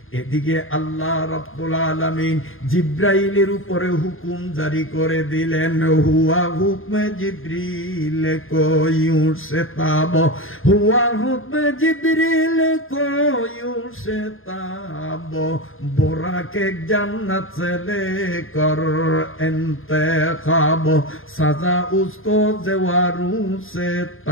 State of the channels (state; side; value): late; right; 0.59 ms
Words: এদিকে আল্লাহ রাব্বুল আলামিন জিব্রাইলের উপরে হুকুম জারি করে দিলেন, হুয়া হুকমে জিব্রিল কোয়ু সে তাব, হুয়া হুকমে জিব্রিল কোয়ু সে তাব, বোরাকে জান্নাত से लेकर इंतखाब, सजा उसको जवारू से